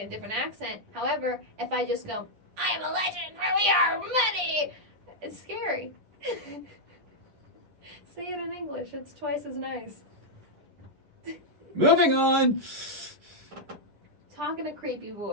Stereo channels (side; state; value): left; late; 10 ms